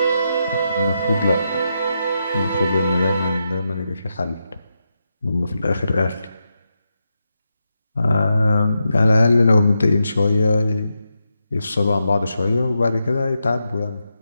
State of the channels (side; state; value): both; inverted; correlation -0.86